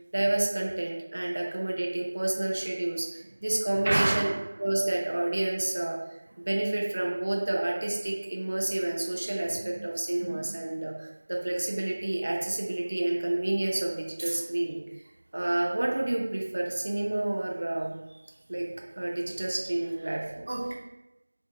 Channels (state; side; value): inverted; both; correlation -1.00